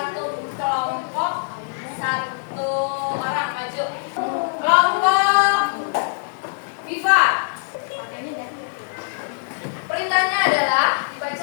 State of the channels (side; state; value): right; silent; digital silence